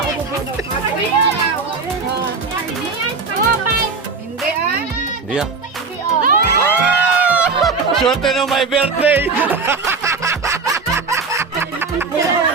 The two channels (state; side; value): quieter; left; 4.5 dB